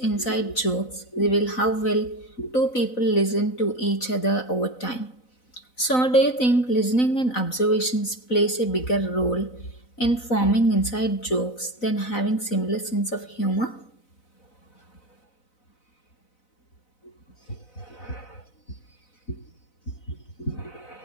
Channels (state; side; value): late; right; 4.0 ms